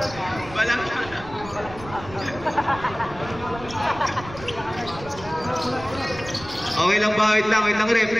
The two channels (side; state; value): right; noise; rumble, 15 dB below the sound